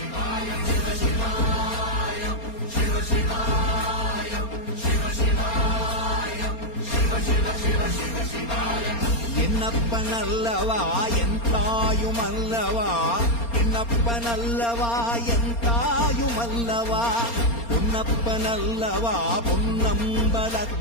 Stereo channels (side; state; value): right; late; 4.3 ms